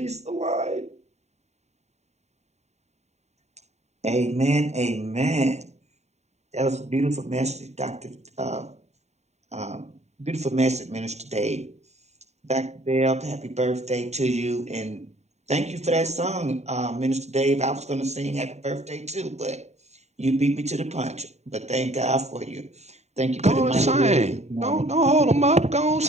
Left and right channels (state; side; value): late; left; 0.32 ms